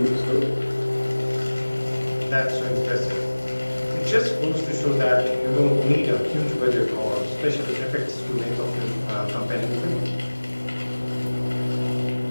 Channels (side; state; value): both; inverted; correlation -1.00